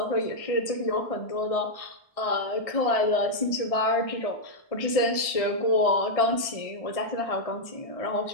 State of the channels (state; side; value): late; right; 1.6 ms